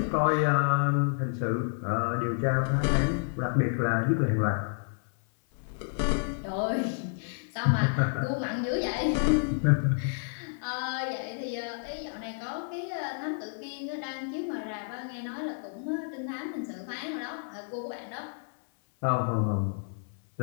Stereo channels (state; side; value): silent; right; 58 dB below the other